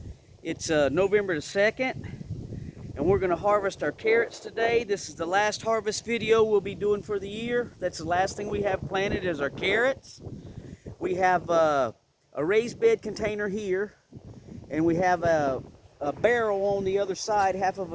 It's November the 2nd, and we're going to harvest our carrots today. This is the last harvest video we'll be doing for the year. That's the last thing we have planted is our carrots. We have a raised bed container here, and we have a barrel on the other side, half of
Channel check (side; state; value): both; identical; correlation 1.00